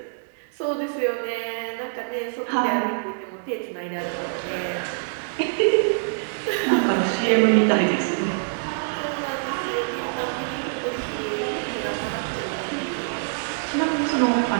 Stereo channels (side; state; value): left; silent; digital silence